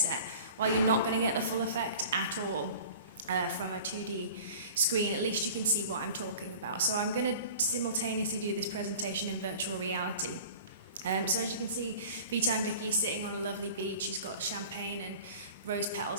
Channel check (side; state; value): both; inverted; correlation -0.42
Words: while you're not going to get the full effect at all from a 2D screen, at least you can see what I'm talking about. So I'm going to simultaneously do this presentation in virtual reality. So as you can see, VTime Vicky is sitting on a lovely beach. She's got champagne and rose